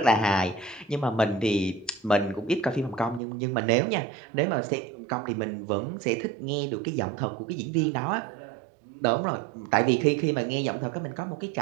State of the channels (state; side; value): drops out; left; at 3.2 s